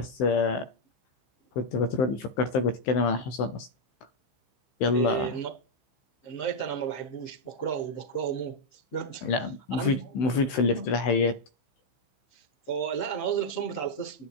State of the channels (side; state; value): right; late; 16 ms